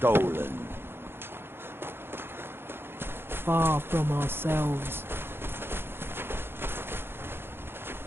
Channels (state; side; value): late; left; 0.11 ms